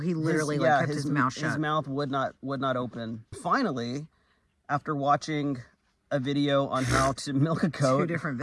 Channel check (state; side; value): identical; both; correlation 1.00